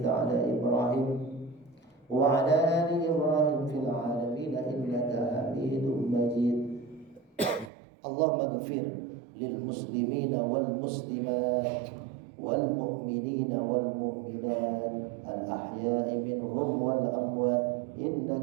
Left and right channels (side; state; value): left; drops out; at 7.7 s